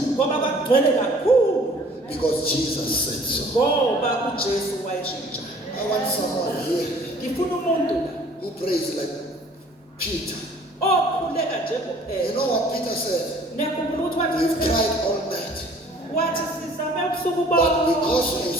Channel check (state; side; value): normal; both; correlation 0.53